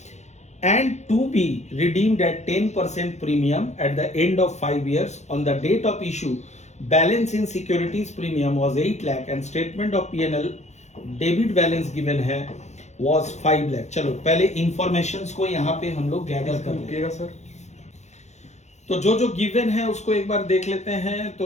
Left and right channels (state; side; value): late; right; 0.33 ms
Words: and to be redeemed at 10% premium at the end of 5 years. On the date of issue, balance in securities premium was 8 lakh and statement of P&L debit balance given है was 5 लाख। चलो पहले इंफॉर्मेशंस को यहाँ पे हम लोग गैदर कर लेंगे सर। तो जो जो गिवन है उसको एक बार देख लेते हैं।